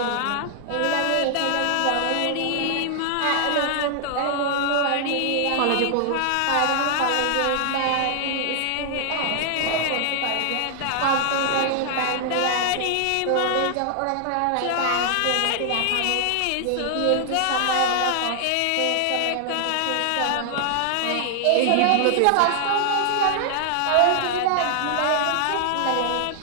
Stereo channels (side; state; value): both; different; correlation 0.00